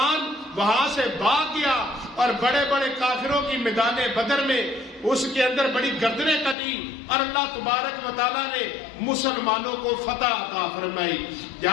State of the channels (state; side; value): drops out; right; at 6.6 s